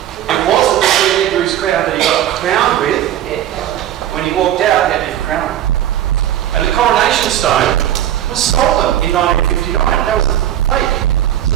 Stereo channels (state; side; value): quieter; left; 11.7 dB